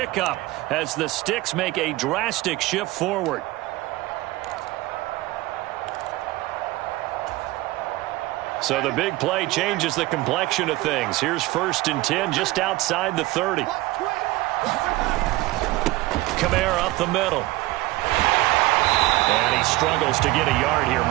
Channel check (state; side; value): quieter; left; 19.2 dB